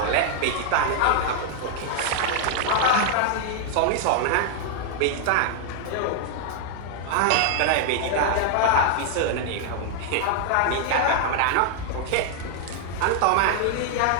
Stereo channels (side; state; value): both; different; correlation 0.00